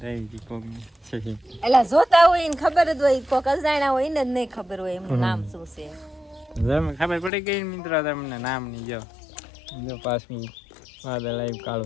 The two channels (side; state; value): right; drops out; at 7.3 s